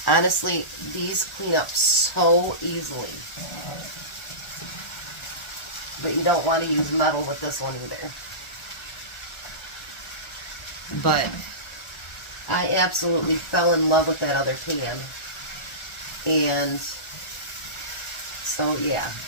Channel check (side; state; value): right; late; 1.4 ms